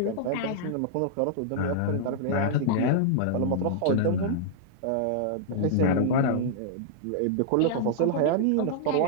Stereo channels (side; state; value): both; different; correlation -0.01